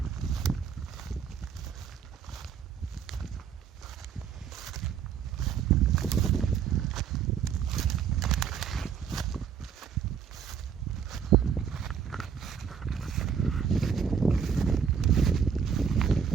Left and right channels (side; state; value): left; quieter; 7.2 dB